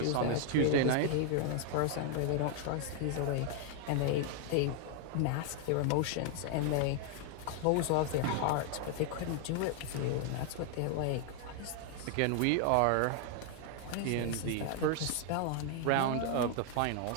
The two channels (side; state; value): both; different; correlation 0.00